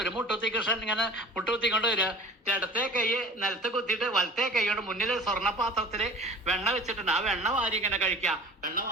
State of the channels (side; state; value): both; normal; correlation 0.42